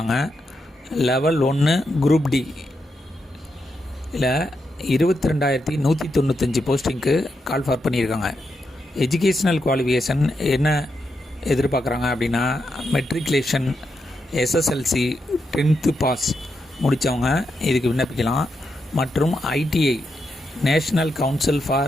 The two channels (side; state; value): both; normal; correlation 0.84